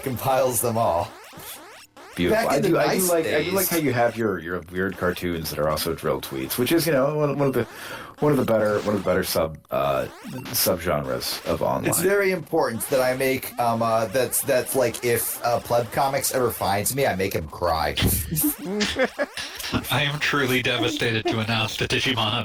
compiles them all. Beautiful. Back in the nice I days. do like how you have your weird cartoons that are also drill tweets, which is one of the better subgenres of online. It's very important that I make that's like if Pleb Comics ever finds me, I make him cry. I am truly devastated to announce that Digimon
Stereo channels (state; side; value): identical; both; correlation 1.00